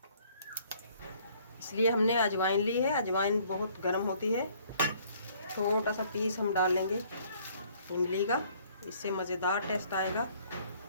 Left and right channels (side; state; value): both; inverted; correlation -0.60